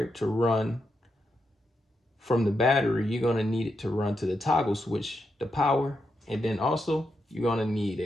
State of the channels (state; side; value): normal; both; correlation 0.84